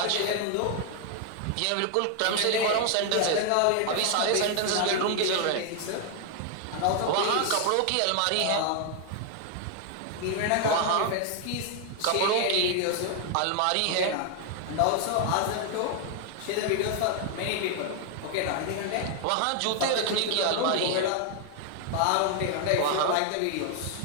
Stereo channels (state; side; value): different; both; correlation 0.00